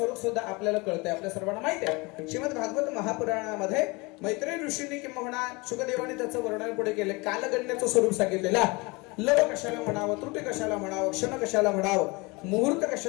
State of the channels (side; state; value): right; quieter; 26.0 dB